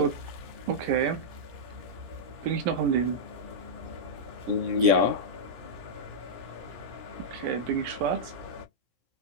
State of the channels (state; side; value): late; left; 17 ms